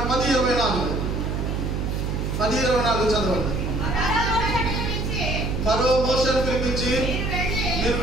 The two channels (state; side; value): noise; right; hum, 1 dB below the sound